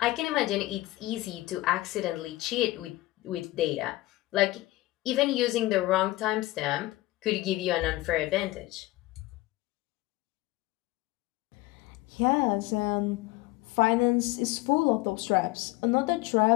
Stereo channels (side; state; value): right; quieter; 18.6 dB